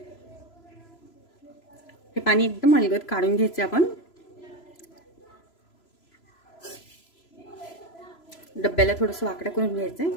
हे पाणी एकदम अलगद काढून घ्यायचं आपण. डब्याला थोडंसं वाकडं करून घ्यायचं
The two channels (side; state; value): right; late; 3.0 ms